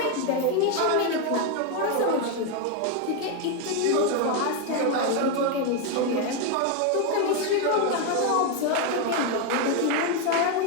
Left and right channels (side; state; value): both; different; correlation 0.01